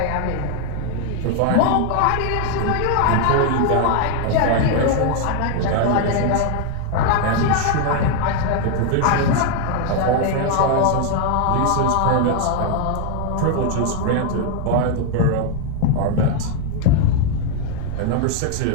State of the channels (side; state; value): both; different; correlation 0.00